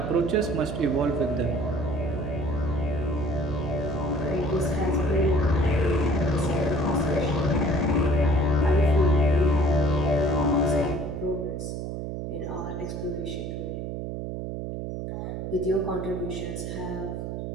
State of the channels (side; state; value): right; noise; hum, 5 dB below the sound